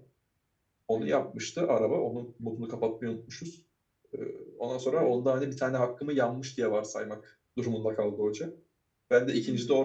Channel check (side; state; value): both; identical; correlation 1.00